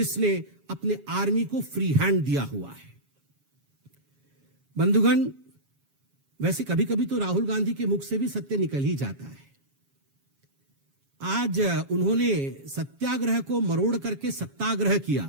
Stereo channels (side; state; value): left; late; 7.3 ms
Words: अपने आर्मी को फ्री हैंड दिया हुआ है। बंधुगण, वैसे कभी कभी तो राहुल गांधी के मुख से भी सत्य निकल ही जाता है। आज उन्होंने सत्याग्रह को मरोड़ करके सत्याग्रह